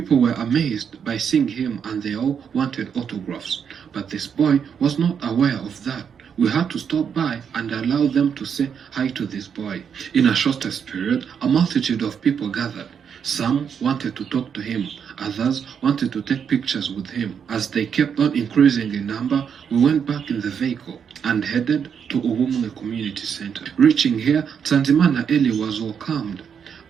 were amazed by seeing him and they all wanted autographs. But this boy was not aware of that. We had to stop by and allow them to say hi to this boy. In a shortest period, a multitude of people gathered. Some wanted to talk to him, others wanted to take pictures with him. As they kept on increasing in number, we went back in the vehicle and headed to Uhumwe Community Center. Reaching here, Tanzimana Eli was welcomed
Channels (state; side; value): quieter; left; 7.4 dB